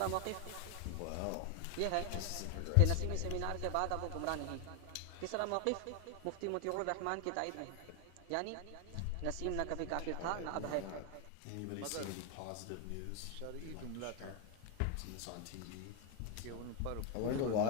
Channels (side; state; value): both; different; correlation 0.01